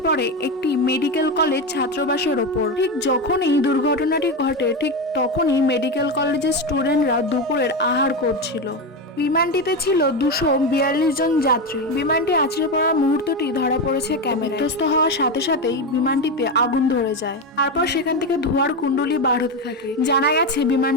পড়ে একটি মেডিকেল কলেজ ছাত্রাবাসের ওপর। ঠিক যখনই দুর্ঘটনাটি ঘটে, ঠিক তখনই মেডিকেল কলেজের স্টুডেন্টরা দুপুরের আহার করছিল। বিমানটিতে ছিল 242 জন যাত্রী। বিমানটি আছড়ে পড়ার মুহূর্তটি ধরা পড়েছে ক্যামেরায়। বিধ্বস্ত হওয়ার সাথে সাথেই বিমানটিতে আগুন ধরে যায়, তারপর সেখান থেকে ধোঁয়ার কুণ্ডলী বার হতে থাকে। জানা গেছে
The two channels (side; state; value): both; normal; correlation 0.15